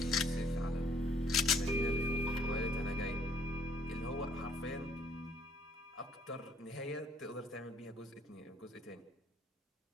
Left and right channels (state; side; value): normal; both; correlation 0.63